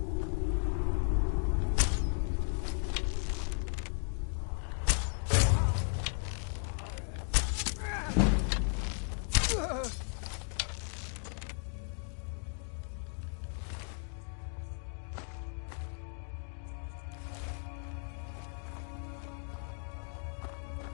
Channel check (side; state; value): right; silent; 54 dB below the other